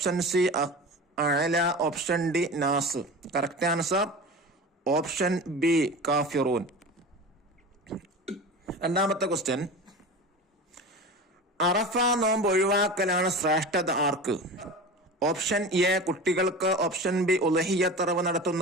സി അഅല, ഓപ്ഷൻ ഡി നാസ്. കറക്റ്റ് ആൻസർ ഓപ്ഷൻ ബി കാഫിറൂൻ. 2ാമത്തെ ക്വസ്റ്റ്യൻ: അറഫ നോമ്പ് ഒഴിവാക്കലാണ് ശ്രേഷ്ഠത ആർക്ക്? ഓപ്ഷൻ എ കുട്ടികൾക്ക്, ഓപ്ഷൻ ബി ഉളഹിയ്യത്ത്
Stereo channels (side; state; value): both; normal; correlation 0.31